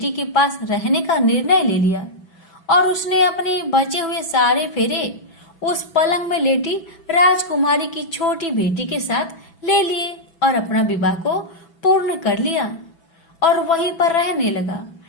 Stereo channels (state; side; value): late; right; 6.0 ms